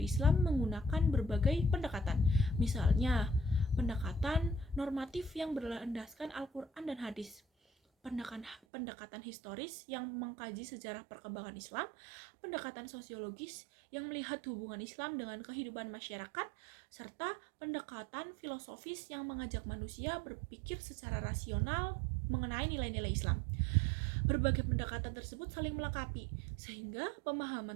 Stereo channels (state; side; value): drops out; left; at 8.6 s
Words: Islam menggunakan berbagai pendekatan. Misalnya, pendekatan normatif yang berlandaskan Al-Quran dan hadis, pendekatan historis yang mengkaji sejarah perkembangan Islam, pendekatan sosiologis yang melihat hubungan Islam dengan kehidupan masyarakat, serta pendekatan filosofis yang mengajak manusia berpikir secara rasional mengenai nilai-nilai Islam. Berbagai pendekatan tersebut saling melengkapi, sehingga pemahaman